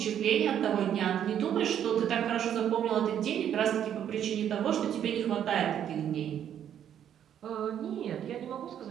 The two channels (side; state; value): left; quieter; 9.7 dB